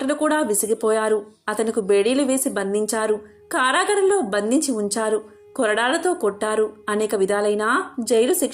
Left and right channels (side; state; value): both; identical; correlation 1.00